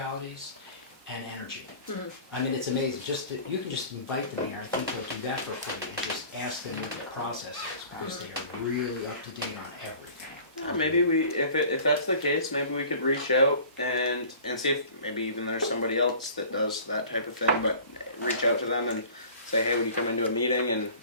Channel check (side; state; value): both; inverted; correlation -0.45